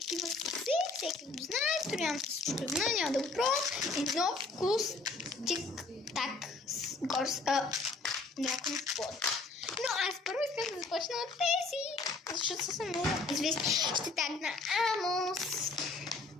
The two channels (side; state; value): right; quieter; 3.6 dB